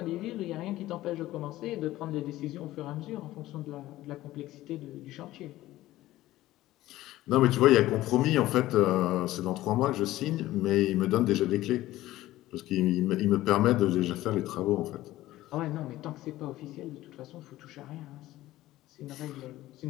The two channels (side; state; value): right; quieter; 15.9 dB